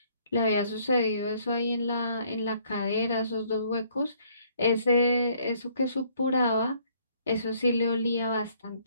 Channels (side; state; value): both; inverted; correlation -0.64